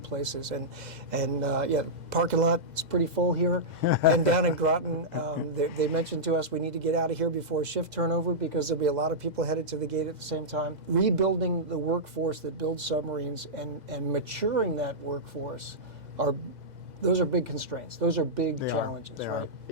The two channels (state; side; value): late; left; 2.0 ms